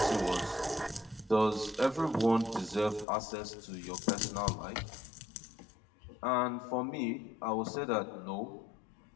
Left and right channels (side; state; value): right; drops out; at 3.1 s